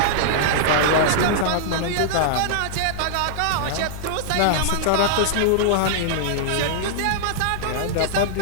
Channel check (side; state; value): both; different; correlation -0.01